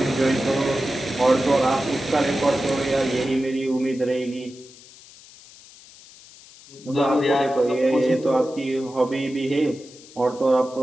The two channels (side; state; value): left; noise; hiss, 22 dB below the sound